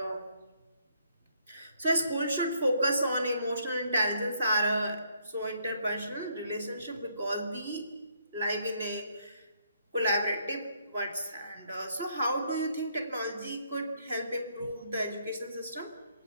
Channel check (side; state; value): both; inverted; correlation -0.70